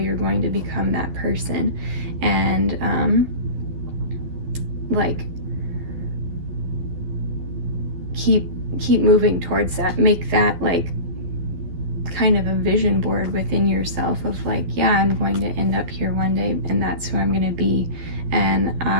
going to become that person, and like keep moving towards that. Make that like kind of a vision board within yourself of like, yeah, I'm going to end up here one day, and that's who I'm going to be. And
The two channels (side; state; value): left; late; 12 ms